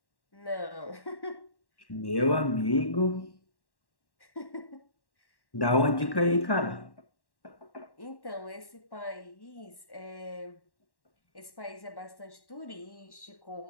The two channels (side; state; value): right; late; 1.1 ms